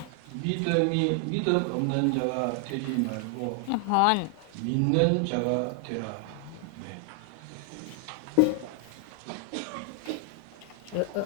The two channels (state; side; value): different; both; correlation 0.00